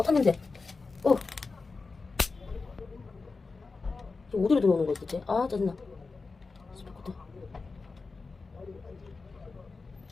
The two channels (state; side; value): quieter; right; 4.1 dB